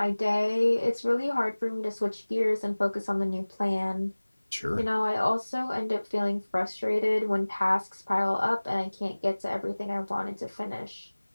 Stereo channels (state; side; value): inverted; both; correlation -1.00